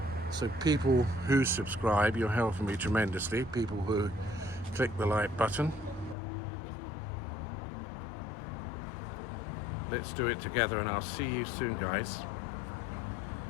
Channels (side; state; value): right; drops out; at 6.2 s